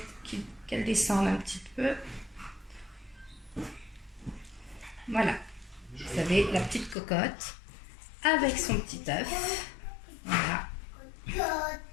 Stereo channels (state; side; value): drops out; right; at 7.0 s